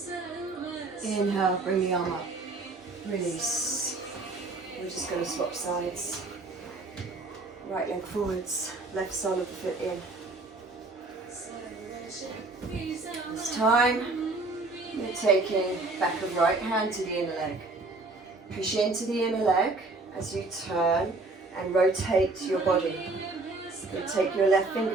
Inhale, bring the arm up. Release. We're just going to swap sides. Right leg forwards, left sole of the foot in. This time, you're taking back of right hand to the inner leg. Push into the inner leg as you turn and rotate your body. Then take your left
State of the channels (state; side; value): quieter; left; 3.4 dB